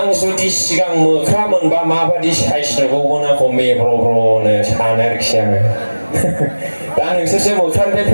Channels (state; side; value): inverted; both; correlation -1.00